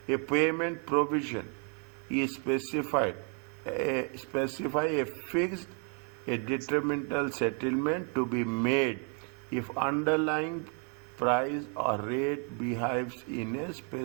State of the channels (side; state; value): left; quieter; 39.5 dB